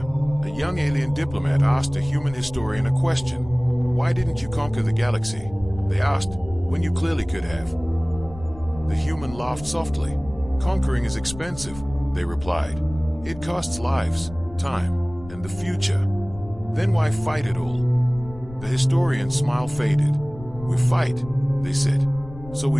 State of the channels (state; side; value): noise; left; rumble, 16 dB below the sound